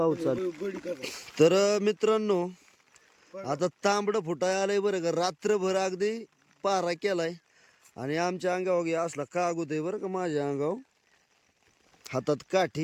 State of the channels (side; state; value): both; identical; correlation 1.00